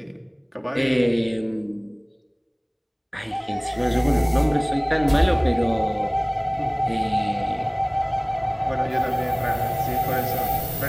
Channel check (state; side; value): identical; both; correlation 1.00